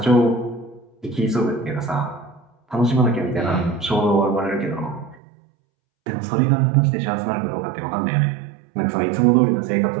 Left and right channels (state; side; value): drops out; left; at 5.2 s